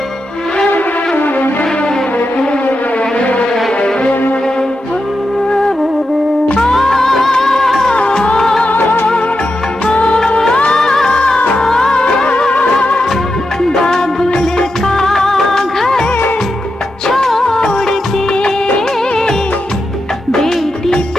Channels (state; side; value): normal; both; correlation 0.88